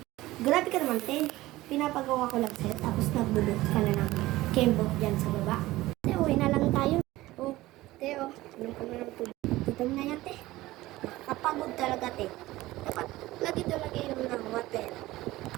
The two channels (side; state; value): left; quieter; 17.7 dB